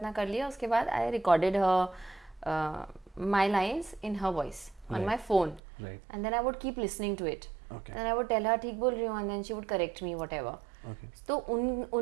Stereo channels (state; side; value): drops out; left; at 5.6 s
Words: कर लिया. उसके बाद I recorded my lines in her voice on my phone, and then I would keep listening to it. Then I would tell her ठीक बोल रही हूँ, and then she would correct me whatever. तो